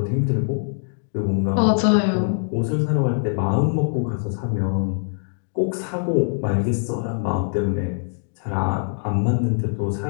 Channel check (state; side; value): silent; right; digital silence